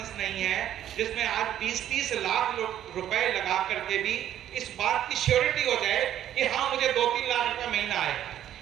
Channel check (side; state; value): left; quieter; 11.2 dB